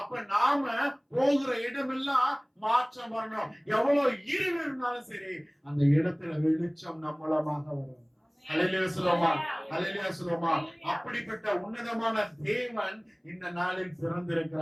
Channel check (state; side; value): identical; both; correlation 1.00